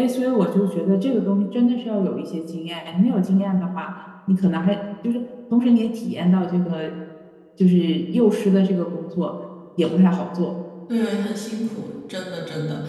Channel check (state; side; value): identical; both; correlation 1.00